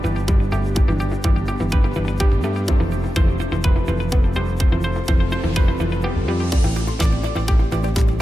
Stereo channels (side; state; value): both; normal; correlation 0.92